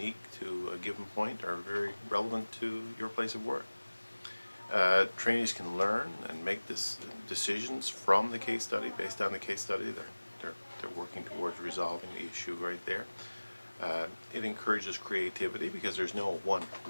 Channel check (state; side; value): inverted; both; correlation -1.00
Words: to a given point or very relevant to your place of work. Trainees can learn and make decisions from the case study based on the case study. They're working towards resolving the issue right there. It encourages creativity because there's no one